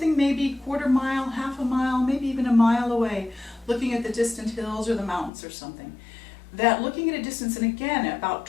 maybe quarter mile, half a mile, maybe even a mile away, looking at the distant hills or the mountains or something. That looking at a distance, and again, about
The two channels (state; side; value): drops out; right; at 5.3 s